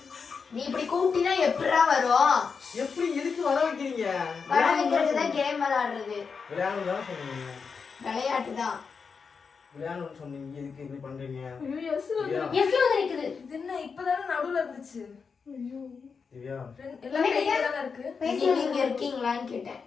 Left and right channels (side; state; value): right; quieter; 5.5 dB